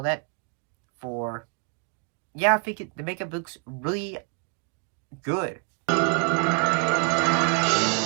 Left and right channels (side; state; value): left; quieter; 36.9 dB